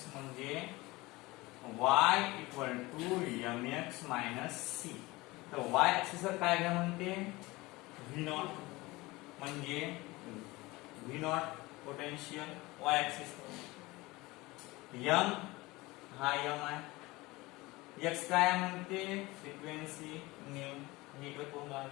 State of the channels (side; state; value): right; quieter; 21.4 dB